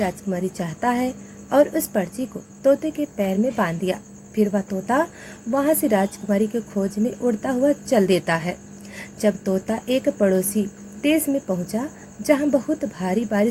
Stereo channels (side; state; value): both; identical; correlation 1.00